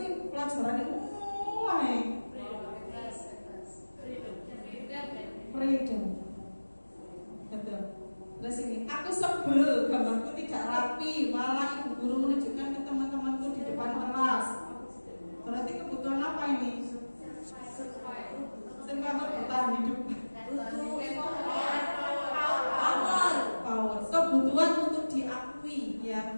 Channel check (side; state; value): both; inverted; correlation -1.00